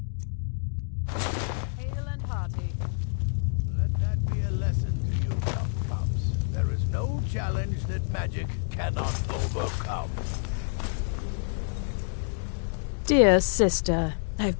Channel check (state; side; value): silent; right; digital silence